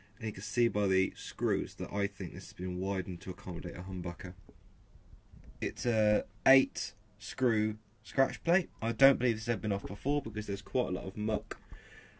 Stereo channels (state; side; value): identical; both; correlation 1.00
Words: and you can see by the screws that I think this has been widened to accommodate a Humbucker. It's a 8 screw scratch plate. I don't believe this has ever been off before because there's quite a lot of muck